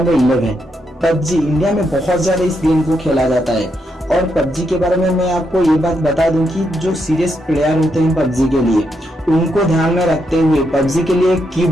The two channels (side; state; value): both; normal; correlation 0.80